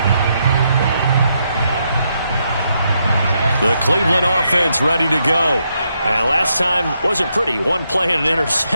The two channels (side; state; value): both; inverted; correlation -0.79